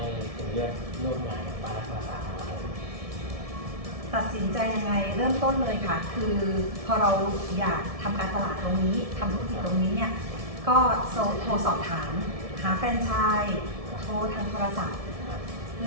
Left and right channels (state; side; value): late; left; 1.7 ms